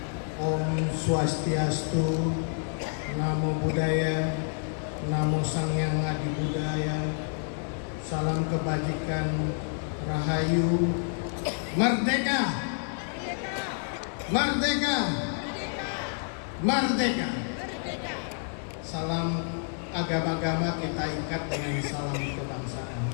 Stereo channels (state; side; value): silent; right; 59 dB below the other